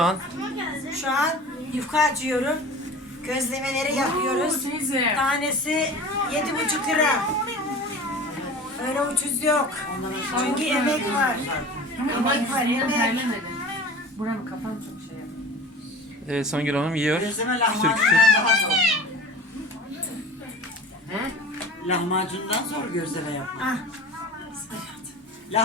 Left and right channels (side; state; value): both; normal; correlation 0.37